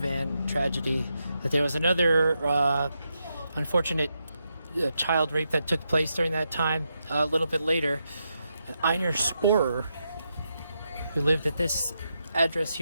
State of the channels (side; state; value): both; inverted; correlation -0.84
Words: tragedy, that there was another unfortunate child rape that took place during that time. A little bit later, Einer Sporer, who lived at this address